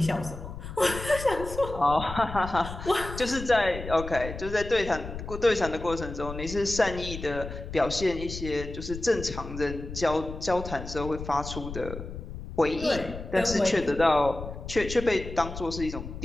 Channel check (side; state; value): left; noise; rumble, 10 dB below the sound